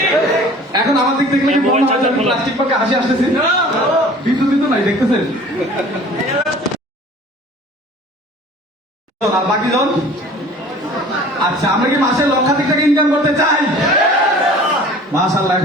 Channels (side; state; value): both; normal; correlation 0.46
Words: এখন আমার দিক দেখলে কি মনে হয় আমি প্লাস্টিক মার্কা হাসি আসতেছি? বিদ্যুৎ নাই, দেখতেছেন? আর বাকি জন, আচ্ছা আমরা কি মাসে লক্ষাধিক টাকা ইনকাম করতে চাই? মাশাআল্লাহ,